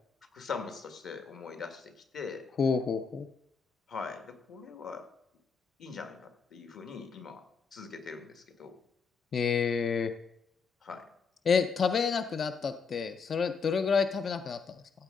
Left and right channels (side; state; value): right; quieter; 5.5 dB